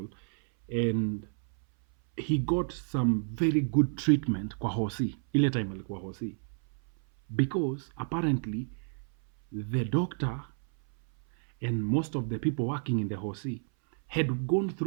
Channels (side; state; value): left; silent; 58 dB below the other